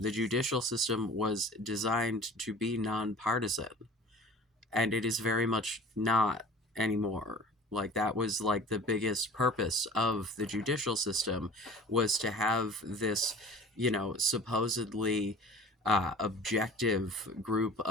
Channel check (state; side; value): normal; both; correlation 0.43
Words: judicial system was designed to be nonpartisan, and it is very much not anymore. Like that was like the biggest purpose of the judicial system, was to have this, supposedly objective group